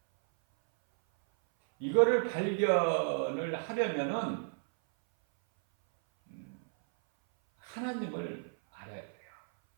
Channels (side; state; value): left; silent; 56 dB below the other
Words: 이거를 발견을 하려면은 하나님을 알아야 돼요.